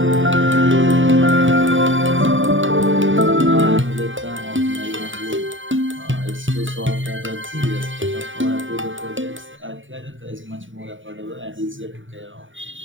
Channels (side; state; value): left; late; 0.56 ms